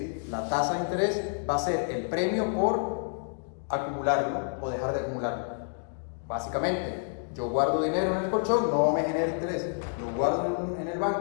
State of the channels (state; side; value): silent; right; digital silence